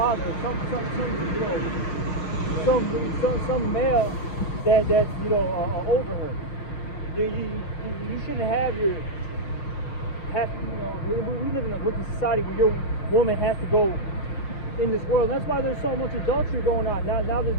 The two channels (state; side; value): late; right; 6.3 ms